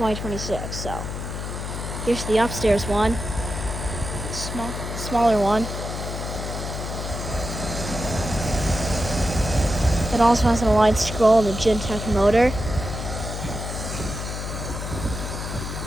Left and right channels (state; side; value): noise; left; hum, 6 dB below the sound